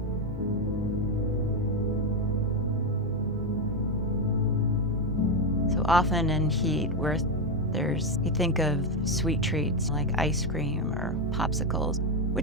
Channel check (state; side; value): normal; both; correlation 0.07